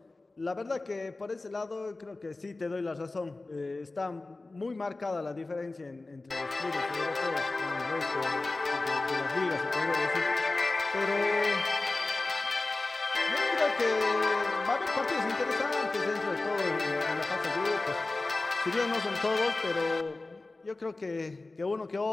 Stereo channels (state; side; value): quieter; right; 3.2 dB